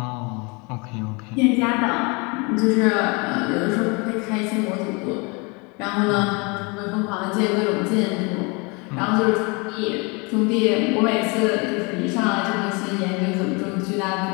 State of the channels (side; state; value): right; quieter; 29.5 dB